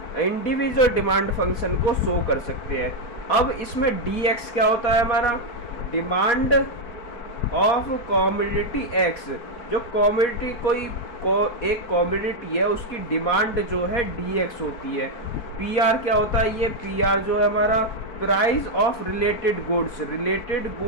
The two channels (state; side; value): late; right; 4.5 ms